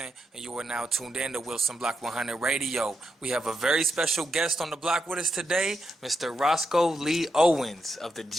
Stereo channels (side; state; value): both; normal; correlation 0.83